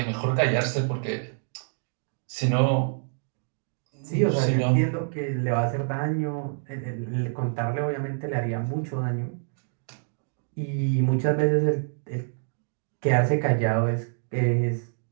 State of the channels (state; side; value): silent; left; digital silence